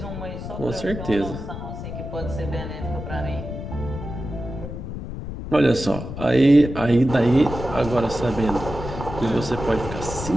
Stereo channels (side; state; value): left; noise; rumble, 8 dB below the sound